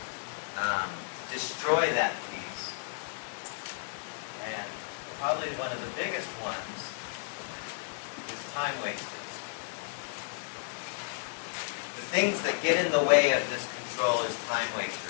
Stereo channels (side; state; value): right; silent; digital silence